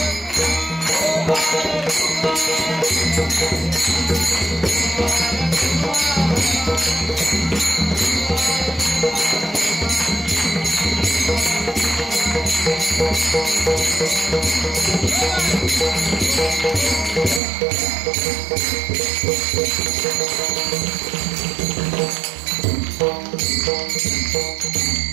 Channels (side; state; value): left; drops out; at 17.4 s